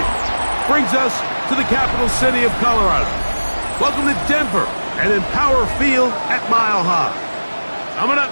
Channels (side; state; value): both; inverted; correlation -1.00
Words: Brings us to the capital city of Colorado. Welcome to Denver and Empower Field at Mile High. Coming up,